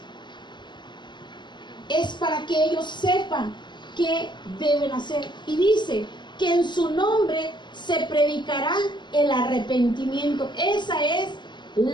es para que ellos sepan qué deben hacer. Y dice que en su nombre se predicará el arrepentimiento. Esa es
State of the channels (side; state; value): right; late; 0.22 ms